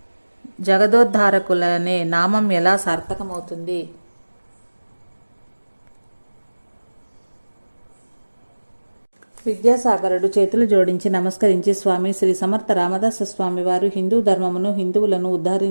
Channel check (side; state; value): both; inverted; correlation -1.00